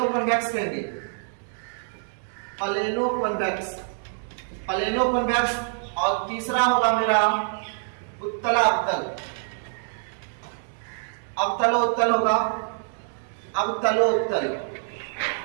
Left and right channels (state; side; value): silent; left; digital silence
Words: कहेंगे, प्लेनोकॉन्वेक्स, प्लेनोकॉन्वेक्स। और तीसरा होगा मेरा उत्तलावतल, अवतलोत्तल होगा, अवतलोत्तल।